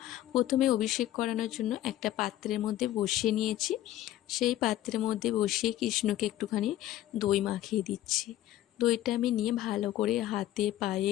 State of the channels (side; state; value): right; quieter; 13.8 dB